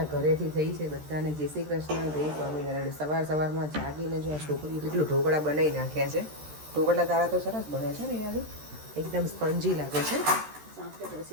ઘરેથી થઈ છે બધાને જય શ્રી કૃષ્ણ, જય સ્વામિનારાયણ. સવારમાં જાગીને જો આ છોકરીએ કેટલું ઢોકળા બનાવી નાખ્યા છે. ઢોકળા તારા તો સરસ બને છે નિરાલી, એકદમ સ્પંજી લાગે છે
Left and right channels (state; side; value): late; left; 13 ms